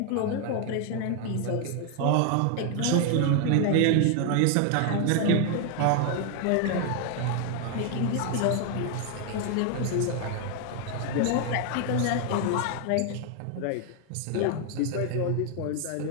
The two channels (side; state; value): both; different; correlation 0.00